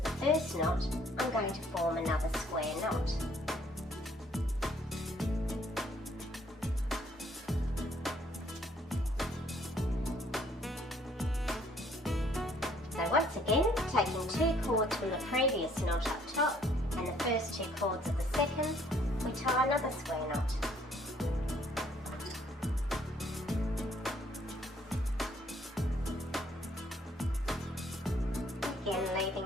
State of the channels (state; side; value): normal; both; correlation 0.63